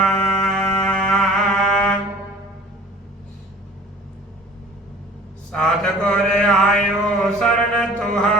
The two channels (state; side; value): normal; both; correlation 0.47